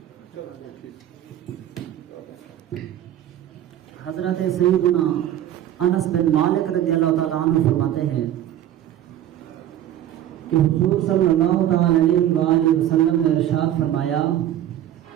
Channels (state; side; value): quieter; left; 11.8 dB